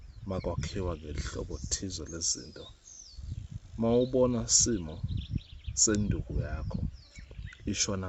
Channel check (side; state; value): both; identical; correlation 1.00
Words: makwakhiwa ngelihlobo thize lezinto. Mawubona simo senduku yakho